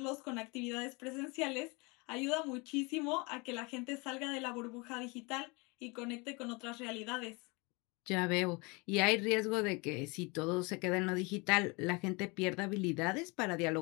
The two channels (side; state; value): right; quieter; 28.0 dB